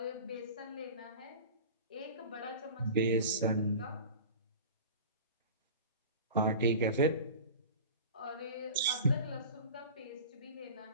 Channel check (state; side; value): inverted; both; correlation -0.36